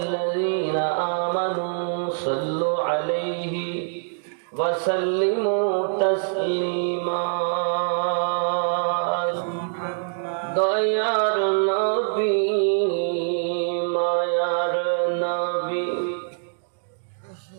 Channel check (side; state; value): left; silent; digital silence